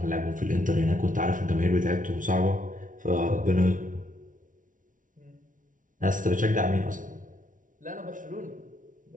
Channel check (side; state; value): left; late; 0.38 ms